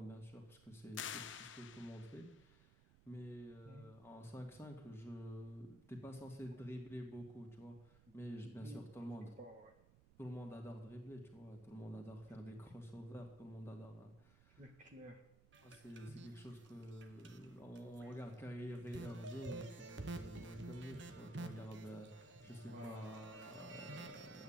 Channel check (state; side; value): noise; right; rumble, 20 dB below the sound